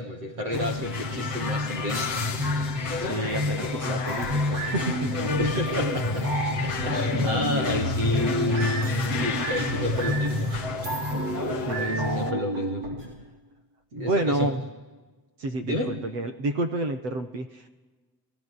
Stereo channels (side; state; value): left; late; 7.6 ms